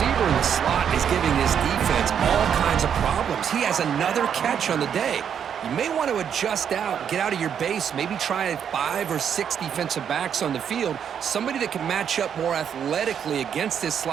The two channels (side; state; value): left; quieter; 8.2 dB